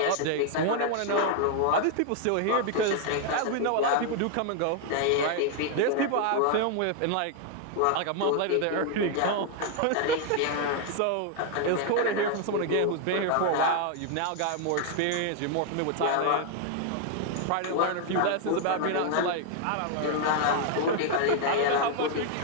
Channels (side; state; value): both; different; correlation 0.00